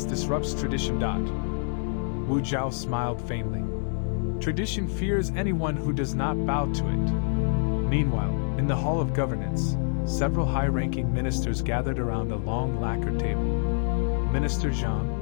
disrupts tradition. Wu Zhao smiled faintly. Tradition fears anyone who does not bow to it. Meanwhile, in the Hall of Governance, several high-ranking ministers gathered around a long lacquer table. Minister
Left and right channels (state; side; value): silent; right; 60 dB below the other